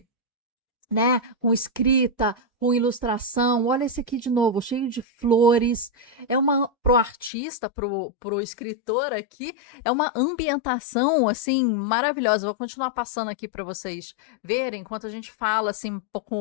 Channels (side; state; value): right; drops out; at 7.3 s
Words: né? Com escrita, com ilustração. Olha esse aqui de novo, cheio de flores. É uma pro artista, pro escritor aqui, é uma ambientação assim maravilhosa. Vou continuar passando aqui para vocês verem enquanto a gente fala assim um